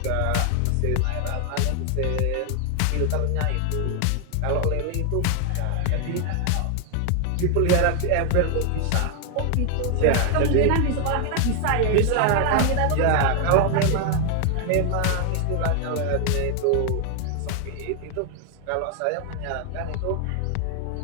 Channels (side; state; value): both; different; correlation 0.00